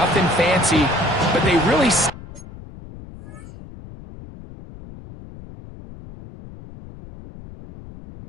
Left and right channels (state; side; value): noise; left; rumble, 17 dB below the sound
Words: fancy, but they really...